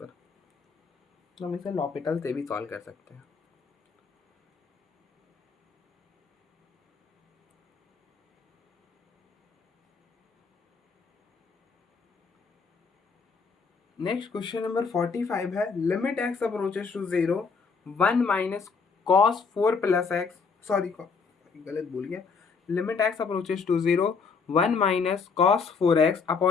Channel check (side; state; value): right; quieter; 5.2 dB